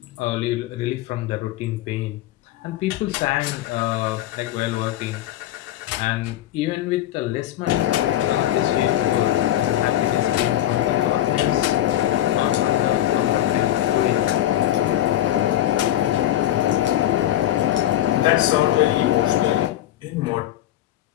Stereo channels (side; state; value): right; quieter; 13.1 dB